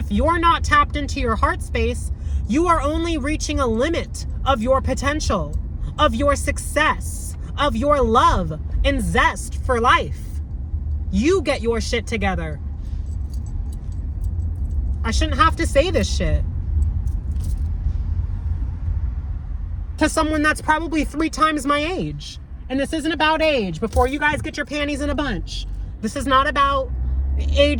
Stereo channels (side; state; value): both; identical; correlation 1.00